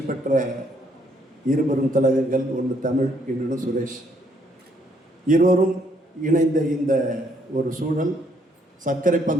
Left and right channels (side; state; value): both; normal; correlation 0.69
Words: பெற்ற இருவரும் தலைவர்கள், ஒன்று தமிழ், இன்னொன்று சுரேஷ். இருவரும் இணைந்த இந்த ஒரு சூழல் சர்க்கரை